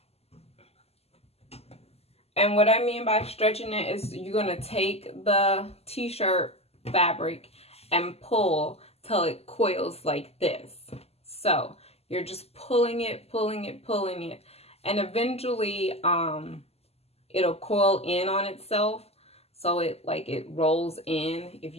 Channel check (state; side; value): late; right; 0.29 ms